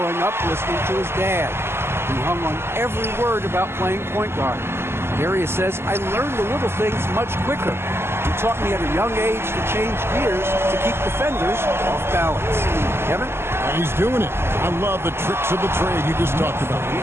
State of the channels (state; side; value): late; left; 0.12 ms